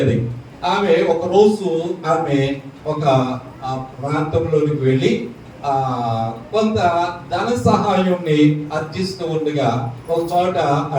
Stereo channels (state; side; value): identical; both; correlation 1.00